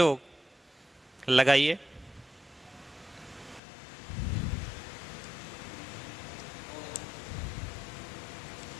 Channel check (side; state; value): right; drops out; at 3.6 s